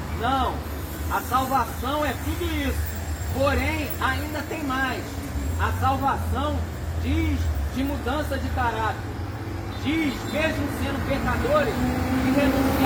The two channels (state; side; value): identical; both; correlation 1.00